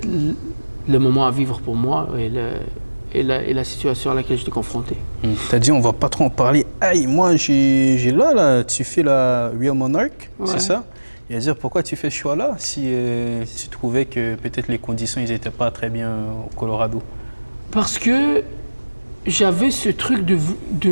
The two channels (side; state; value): both; inverted; correlation -1.00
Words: le moment à vivre pour moi et la situation à laquelle j'étais confronté. Tu as dit on va pas trop en parler. Aïe, moi j'ai là, tu fais la Real Monarch, c'est ça? Et à dire pourquoi tu fais ce choix-là si tu trouvais que peut-être les conditions n'étaient pas très bien au Colorado? Parce que j'avais ce truc